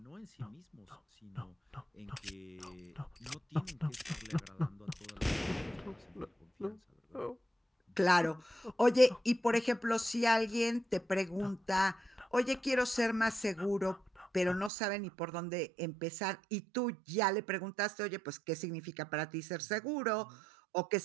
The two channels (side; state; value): left; drops out; at 14.7 s